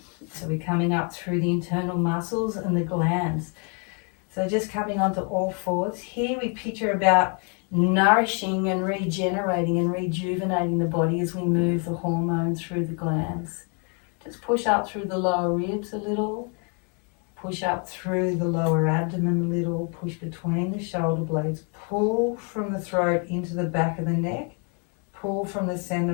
So we're coming up through the internal muscles and the glands. So just coming onto all fours. Here we picture about nourishing and regenerating and rejuvenating the body as we move the hormones through the glands. Just push up through the lower ribs a little. Push up through the lower abdomen a little. Push between the shoulder blades. Pull from the throat into the back of the neck. Pull from the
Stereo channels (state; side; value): quieter; right; 38.2 dB